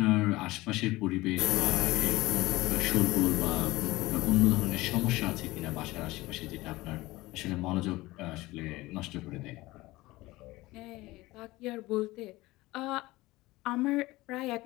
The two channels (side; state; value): right; quieter; 19.6 dB